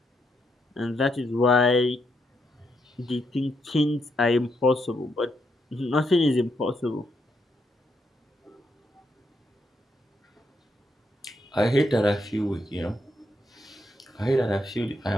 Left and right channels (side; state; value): both; normal; correlation 0.79